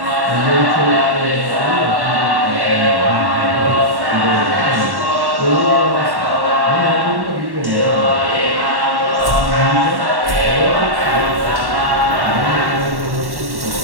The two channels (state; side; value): late; left; 1.1 ms